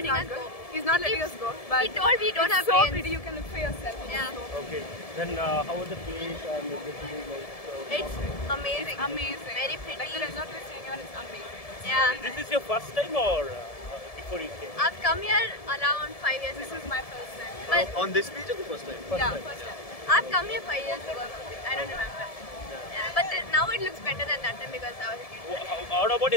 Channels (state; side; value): late; right; 1.7 ms